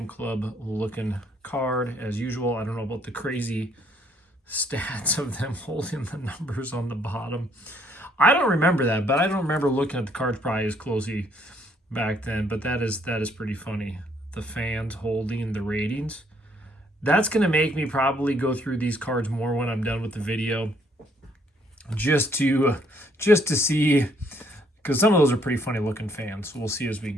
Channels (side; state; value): both; normal; correlation 0.67